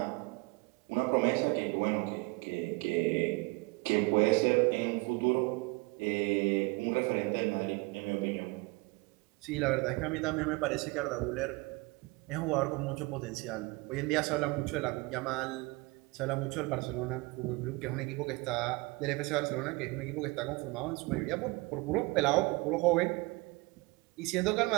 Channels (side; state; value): left; quieter; 25.6 dB